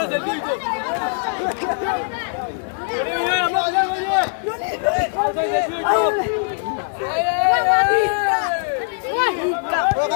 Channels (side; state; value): right; silent; digital silence